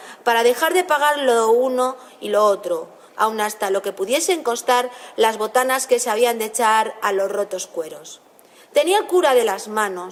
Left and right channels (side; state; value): both; identical; correlation 1.00